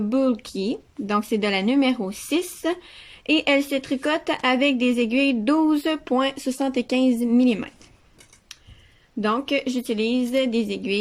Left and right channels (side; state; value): both; identical; correlation 1.00